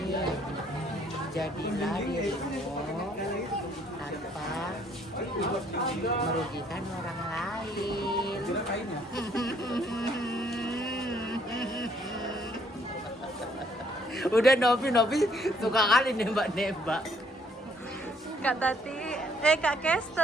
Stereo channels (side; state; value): both; normal; correlation 0.65